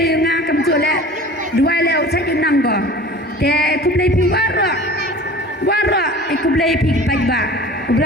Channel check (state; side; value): normal; both; correlation 0.41